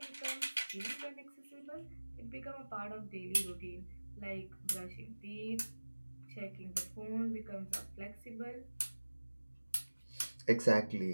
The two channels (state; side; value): inverted; both; correlation -1.00